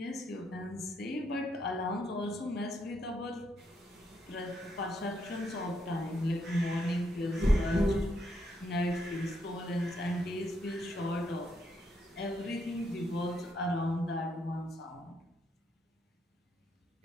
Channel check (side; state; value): both; normal; correlation 0.77